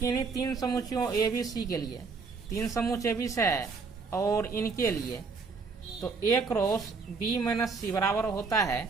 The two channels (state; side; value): quieter; left; 4.7 dB